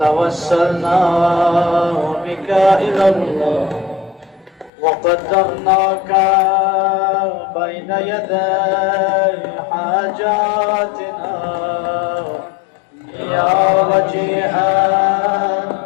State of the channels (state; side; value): drops out; right; at 4.7 s